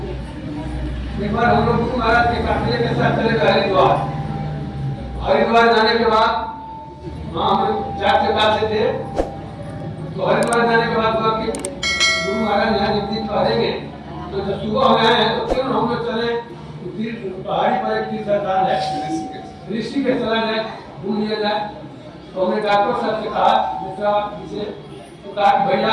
एक बार हम लोग गुरु महाराज के काफिले के साथ चले गए हरिद्वार। हरिद्वार जाने के बाद वहाँ हम 4 से 5 से थे तो हरिद्वार जाने के बाद हुआ कि गुरु महाराज यहाँ एक दिन ठहरेंगे तो जब सुबह हो गए हैं तो क्यों हम लोग चले पहाड़ी पर एक तीर्थ स्थान है, ऋषि के चला जाए, घूम लिया जाए। तो हमने डॉक्टर साहब से कहा जिसे तो कहा कि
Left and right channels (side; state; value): both; identical; correlation 1.00